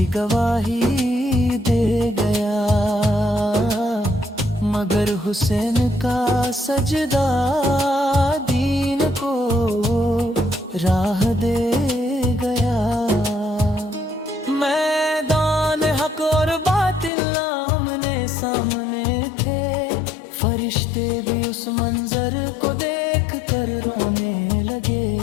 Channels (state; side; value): drops out; right; at 17.1 s